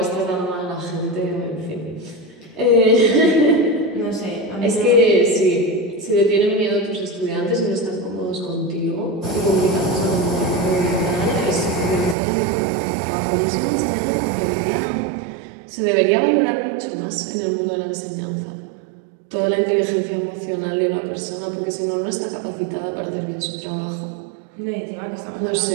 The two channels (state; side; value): drops out; left; at 12.2 s